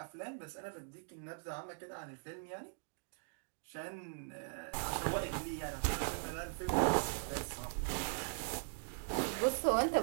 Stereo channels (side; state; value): left; silent; digital silence